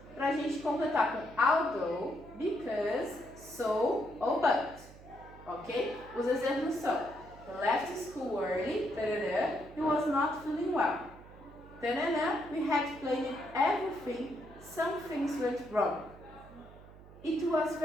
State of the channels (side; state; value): right; noise; hum, 19 dB below the sound